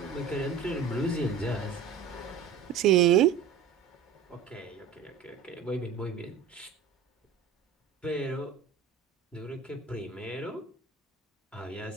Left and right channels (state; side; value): quieter; left; 6.6 dB